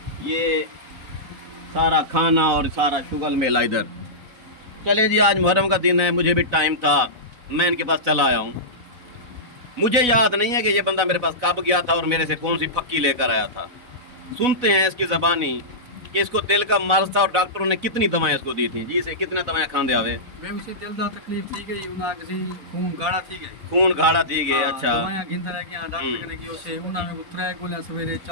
ये सारा खाना और सारा शुगल मेला इधर। चले जी, आज मुहर्रम का दिन है, मुझे भी टाइम था, मैं इनके पास चला आया हूँ। मुझे याद नहीं है कि ये बंदा मेरे पास कब गया था और मेरे से कौन सी फक्की लेकर आया था। सुनते हैं इसकी ज़बानी कि इसको दिल का मर्ज था और डॉक्टरों ने कितनी दवाएं इसको दी थी। जी इसे कितने दवाएं खांदे आवे? मैं उसे दिल दा तकलीफ थी गई, उना किसी खून गाढ़ा थी गई, खून गाढ़ा थी गए। अच्छा, दवाएं गिनता रह गया, डॉक्टर ने की उसे उना में 3 गोलियां सवेरे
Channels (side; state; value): left; late; 4.0 ms